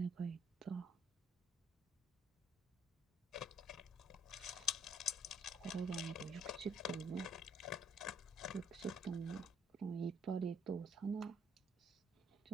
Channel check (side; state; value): both; normal; correlation 0.66